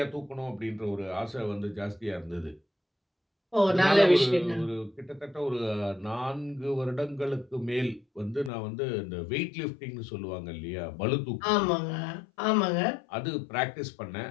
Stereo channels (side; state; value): right; drops out; at 8.5 s